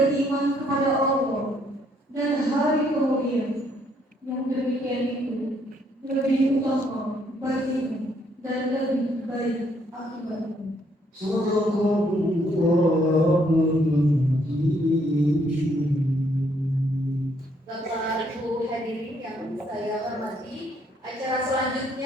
kepada Allah dan hari kemudian, yang demikian itu lebih utama bagimu dan lebih baik akibatnya. Bapak Ibu hadirin yang saya hormati, acara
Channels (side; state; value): both; normal; correlation 0.69